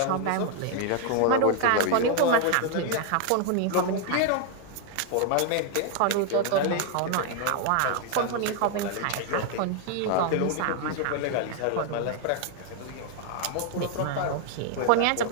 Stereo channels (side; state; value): both; different; correlation 0.00